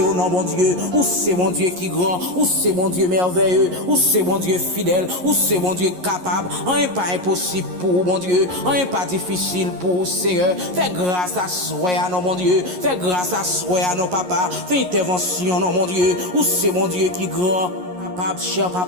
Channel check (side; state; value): left; late; 11 ms